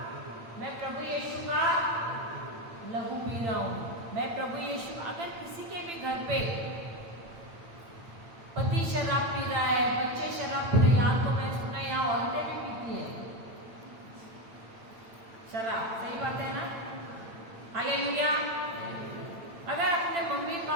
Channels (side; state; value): left; late; 8.8 ms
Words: लहू पी रहा हूं। मैं प्रभु यीशु। अगर किसी के भी घर पे पति शराब पी रहा है, बच्चे शराब पी रहे हैं, यहाँ तो मैं सुना यहाँ औरतें भी पीती हैं शराब, सही बात है ना? हालेलुया। अगर अपने मम्मी